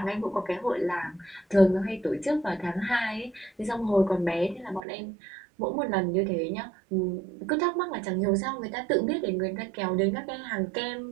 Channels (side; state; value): left; drops out; at 4.8 s